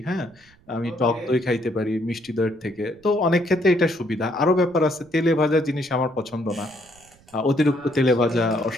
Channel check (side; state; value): right; noise; rumble, 29 dB below the sound